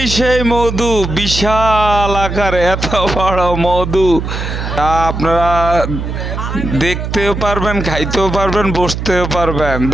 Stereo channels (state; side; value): noise; right; hum, 5 dB below the sound